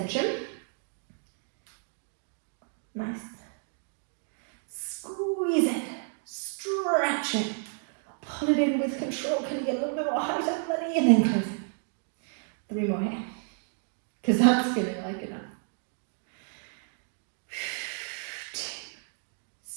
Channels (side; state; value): left; silent; 57 dB below the other